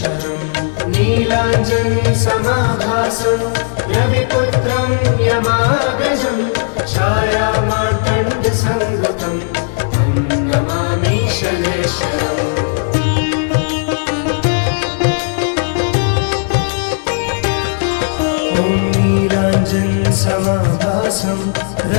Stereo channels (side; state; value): right; silent; 67 dB below the other